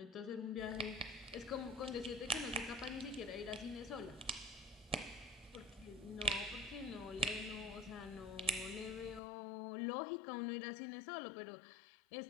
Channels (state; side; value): drops out; right; at 9.2 s